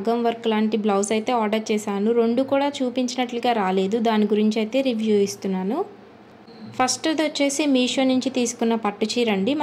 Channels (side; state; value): both; identical; correlation 1.00